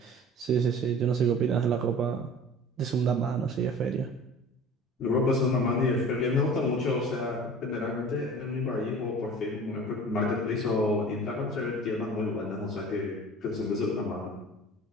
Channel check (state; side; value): normal; both; correlation 0.41